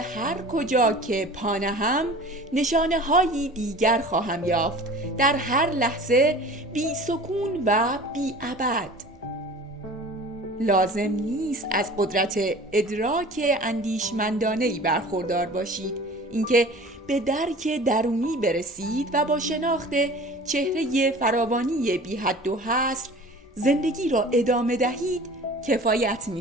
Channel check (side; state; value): both; normal; correlation 0.42